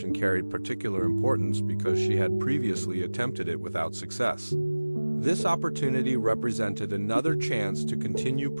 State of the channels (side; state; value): both; inverted; correlation -1.00